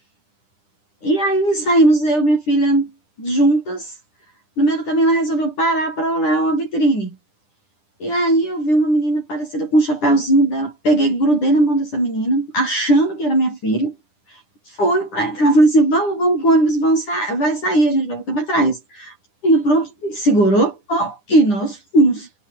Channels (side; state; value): right; late; 10 ms